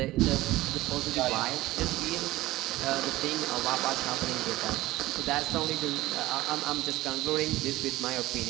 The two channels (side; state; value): left; quieter; 17.6 dB